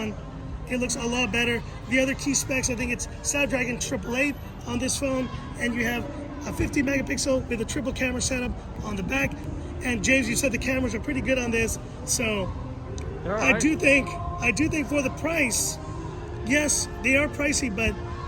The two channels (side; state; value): both; identical; correlation 1.00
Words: it looks a lot better. The other key specs, I think it's Snapdragon 888 on this phone, and you have a 50 megapixel with a triple camera setup on the back. And James, you said the cameras are pretty good on this, so right. I do think for the price, yes, they are pricey, but